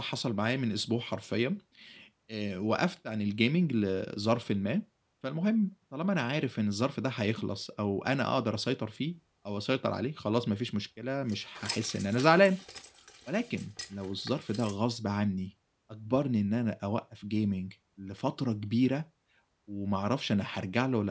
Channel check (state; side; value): identical; both; correlation 1.00